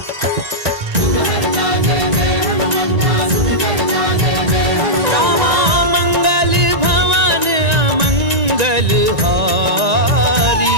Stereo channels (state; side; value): late; left; 1.9 ms